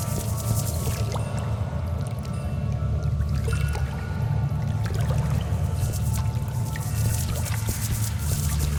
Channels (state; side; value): identical; both; correlation 1.00